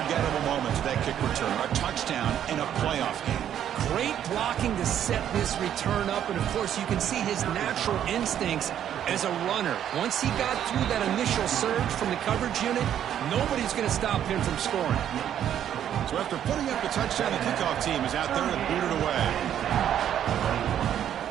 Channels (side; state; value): left; quieter; 10.1 dB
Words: moment to that kick return. A touchdown in a playoff game. Great blocking to set this return up, and of course you can see his natural instincts as a runner. Once he got through that initial surge from the coverage unit, nobody's going to stop him from scoring. So after putting up the touchdown, the kickoff team is out there to boot it away.